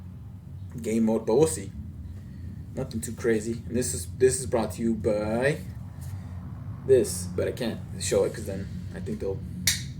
game mode, but we'll see. Nothing too crazy. And this is brought to you by this, but I can't show it because then I think they'll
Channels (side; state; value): both; identical; correlation 1.00